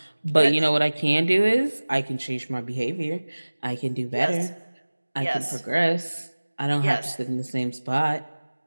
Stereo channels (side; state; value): both; inverted; correlation -1.00